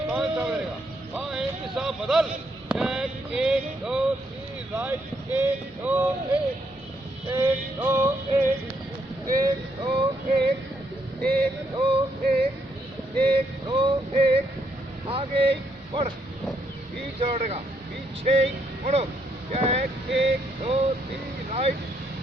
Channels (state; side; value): normal; both; correlation 0.75